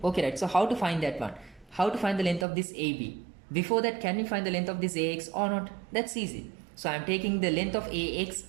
Okay, right. So how to find that one? How to find the length of this AB? Before that, can we find the length of this AX or not? That's easy. So I am taking the length of AX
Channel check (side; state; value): left; drops out; at 2.5 s